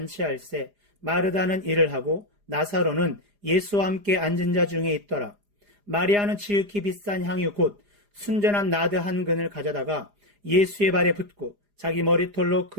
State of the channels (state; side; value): late; left; 4.9 ms